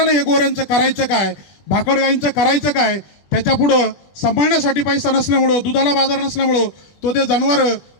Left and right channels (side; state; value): right; late; 20 ms